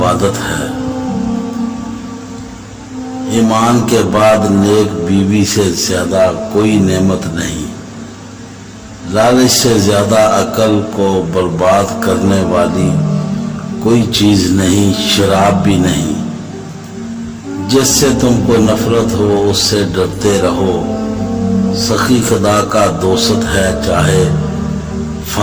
ہے۔ ایمان کے بعد نیک بیوی سے زیادہ کوئی نعمت نہیں۔ لالچ سے زیادہ عقل کو برباد کرنے والی کوئی چیز نہیں، شراب بھی نہیں۔ جس سے تم کو نفرت ہو اس سے ڈرتے رہو۔ سخی خدا کا دوست ہے چاہے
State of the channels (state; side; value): identical; both; correlation 1.00